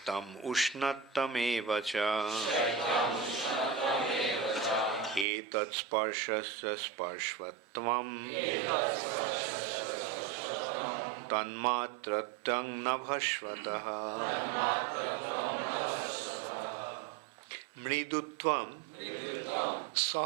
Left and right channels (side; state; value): left; drops out; at 5.2 s